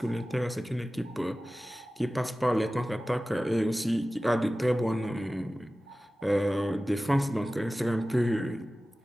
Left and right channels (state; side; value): normal; both; correlation 0.96